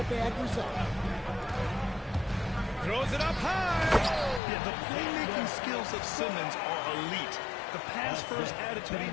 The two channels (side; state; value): right; drops out; at 4.4 s